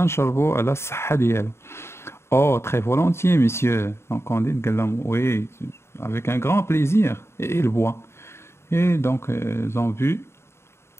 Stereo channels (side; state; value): right; late; 0.12 ms